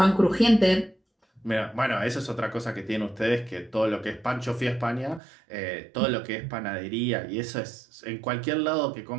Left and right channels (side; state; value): left; drops out; at 5.2 s